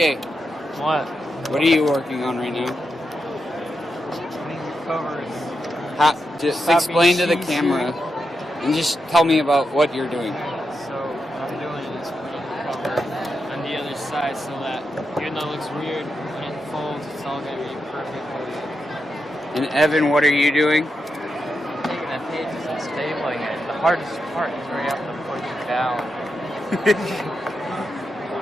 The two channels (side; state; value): both; normal; correlation 0.86